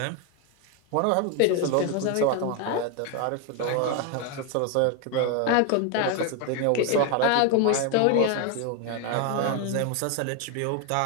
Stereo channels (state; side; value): different; both; correlation 0.01